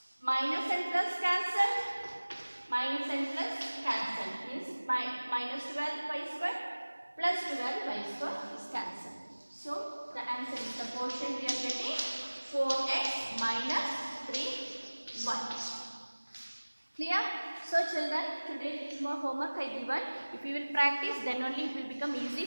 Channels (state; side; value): inverted; both; correlation -1.00